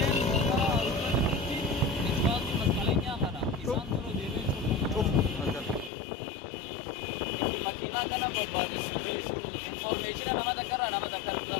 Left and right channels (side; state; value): right; drops out; at 5.9 s